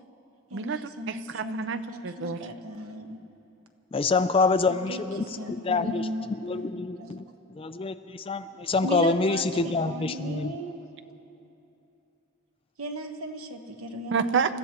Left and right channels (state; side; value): normal; both; correlation 0.25